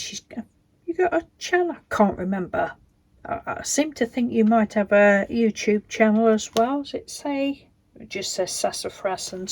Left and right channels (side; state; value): both; identical; correlation 1.00